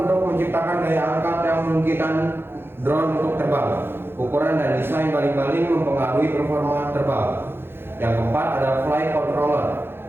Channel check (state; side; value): late; left; 0.11 ms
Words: untuk menciptakan daya angkat yang memungkinkan drone untuk terbang. Ukuran dan desain baling-baling mempengaruhi performa terbang. Yang keempat ada flight controller,